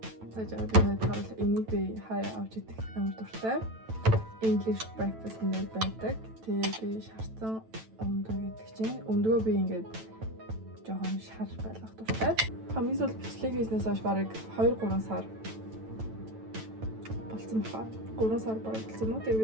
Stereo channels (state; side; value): late; left; 9.1 ms